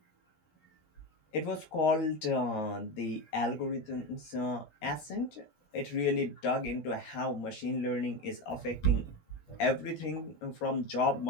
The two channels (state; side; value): late; right; 13 ms